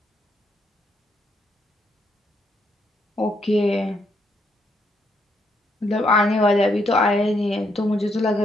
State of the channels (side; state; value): both; normal; correlation 0.75